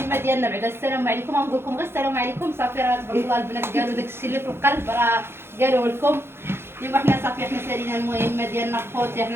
ديالنا بعد السلام عليكم. غنقول لكم غير السلام عليكم صافي. راه تبارك الله البنات قالوا داك الشيء اللي في القلب راه قالوه لكم. ايوا حنا صافي حنا سالينا المهمه ديالنا خوتي.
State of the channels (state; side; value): late; left; 0.11 ms